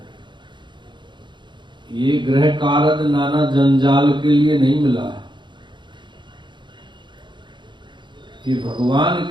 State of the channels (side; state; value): left; late; 0.23 ms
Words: ये ग्रह कारज नाना जंजाल के लिए नहीं मिला है। ये भगवान